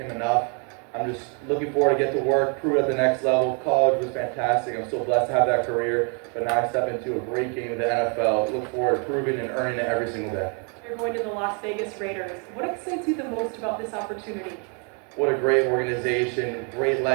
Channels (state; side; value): quieter; left; 37.9 dB